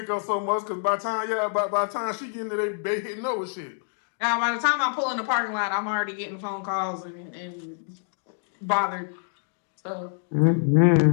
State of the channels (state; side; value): silent; right; digital silence